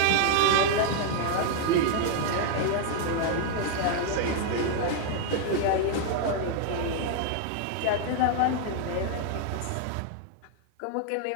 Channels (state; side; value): different; both; correlation 0.00